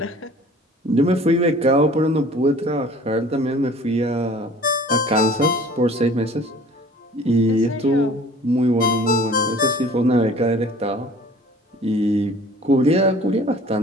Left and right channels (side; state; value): both; normal; correlation 0.49